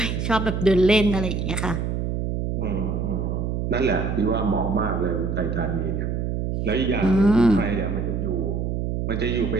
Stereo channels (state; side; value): noise; right; hum, 1 dB below the sound